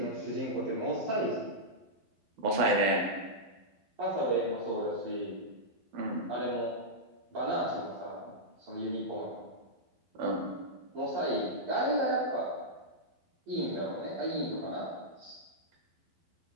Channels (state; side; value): late; left; 12 ms